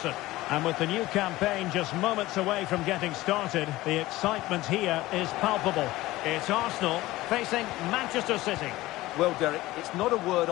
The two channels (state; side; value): quieter; right; 17.9 dB